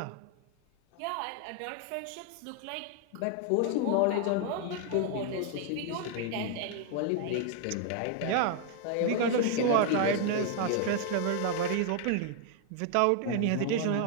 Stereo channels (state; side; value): different; both; correlation 0.00